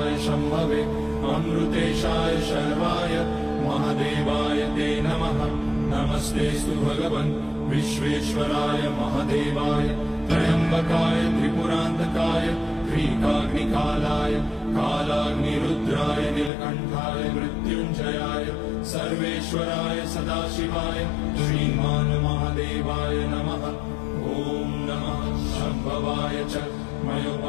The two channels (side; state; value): right; drops out; at 16.5 s